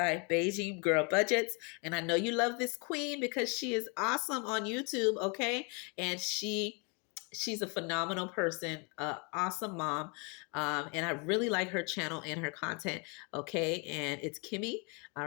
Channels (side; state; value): right; quieter; 33.4 dB